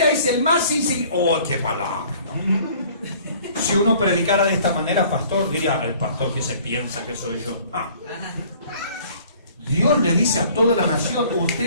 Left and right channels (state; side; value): inverted; both; correlation -0.53